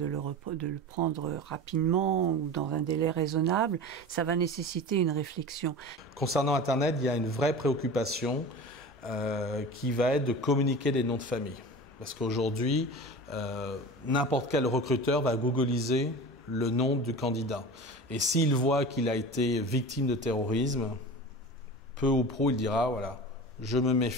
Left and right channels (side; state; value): both; normal; correlation 0.33